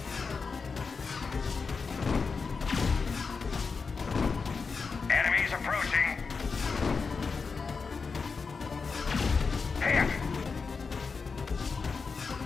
Enemies approaching. Hit!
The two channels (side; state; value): right; quieter; 4.9 dB